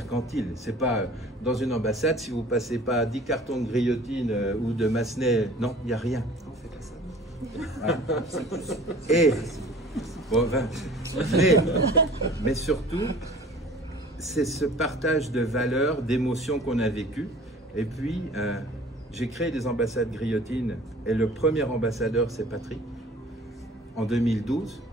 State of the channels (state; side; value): normal; both; correlation 0.47